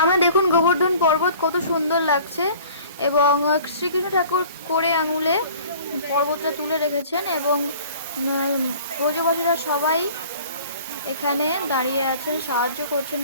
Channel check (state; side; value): inverted; both; correlation -0.48